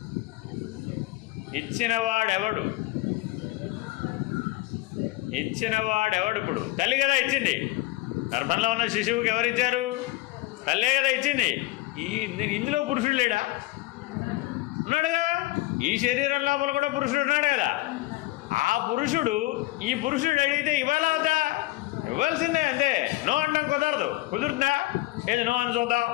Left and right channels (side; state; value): right; quieter; 19.5 dB